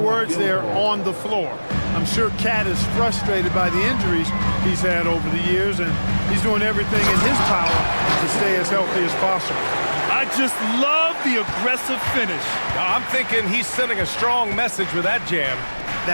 there, on the floor. I'm sure Cat is frustrated by the injuries he's had over the years, and he's doing everything in his power to stay as healthy as possible. I just love the aggressive finish. I'm thinking he's sending a strong message with that jam.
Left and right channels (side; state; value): both; inverted; correlation -1.00